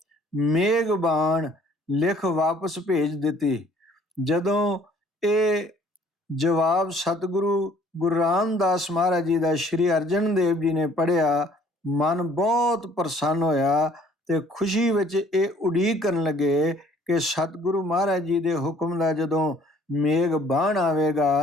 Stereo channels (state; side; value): normal; both; correlation 0.57